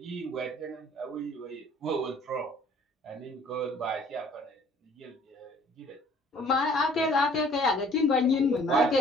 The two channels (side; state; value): both; normal; correlation 0.55